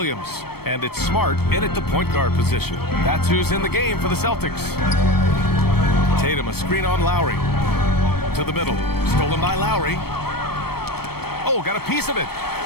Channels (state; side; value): late; right; 0.96 ms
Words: And it's Smart in at the point guard position. That's who's in the game for the Celtics. Tatum, a screen on Lowry. To the middle. Stolen by Lowry. Oh, got a piece of it.